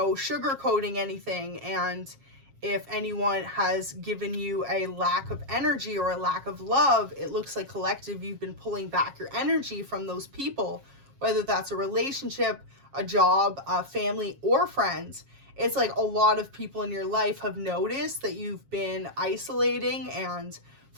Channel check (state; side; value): late; left; 7.3 ms